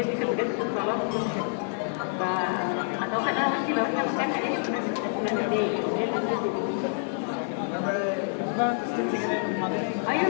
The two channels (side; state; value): right; silent; 60 dB below the other